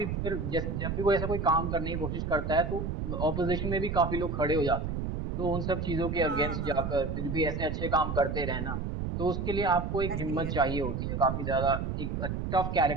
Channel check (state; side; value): noise; right; rumble, 3 dB below the sound